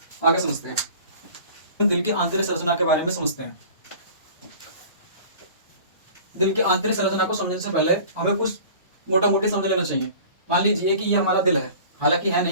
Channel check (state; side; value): inverted; both; correlation -0.43